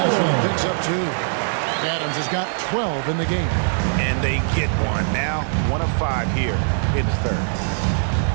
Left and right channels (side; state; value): left; silent; digital silence